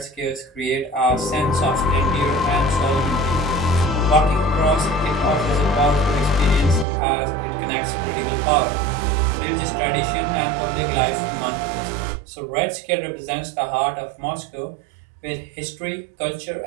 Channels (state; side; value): drops out; left; at 6.9 s